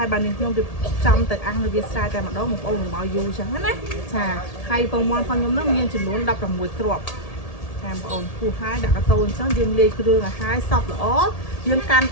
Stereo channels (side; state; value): right; late; 1.8 ms